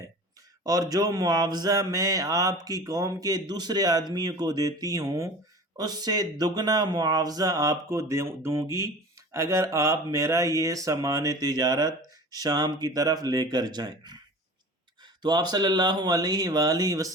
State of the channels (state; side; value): normal; both; correlation 0.38